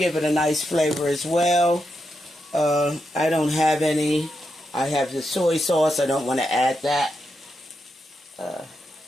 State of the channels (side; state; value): both; normal; correlation 0.85